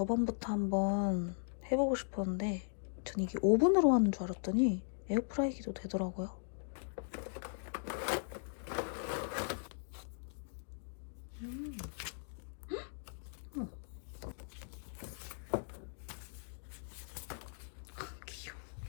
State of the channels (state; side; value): silent; right; digital silence